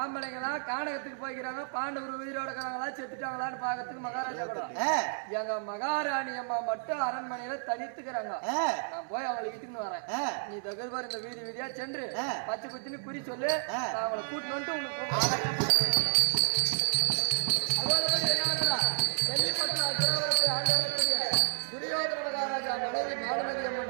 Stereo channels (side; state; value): left; silent; 57 dB below the other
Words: கானகத்துக்கு போய்க்கிறாங்க. பாண்டவர் உயிரோட இருக்கிறாங்களா செத்துட்டாங்களான்னு பாக்கிறதுக்கு மகாராஜா கூட எங்க மகாராணி அம்மா மட்டும் அரண்மனையில தனித்துக்கிறாங்க. நான் போய் அவங்களை இட்டுன்னு வரேன். நீ தகுதி இந்த வீதி வீதியா சென்று பச்சை குத்தின்னு குறி சொல்லு. நான் அவங்களை கூட்டின்னு வந்துட்டு உங்களுக்கு துரியோதன மகாராஜா மனைவி மாலமதி